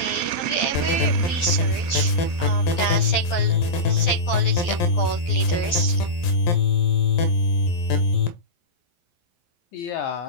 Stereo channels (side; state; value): right; late; 12 ms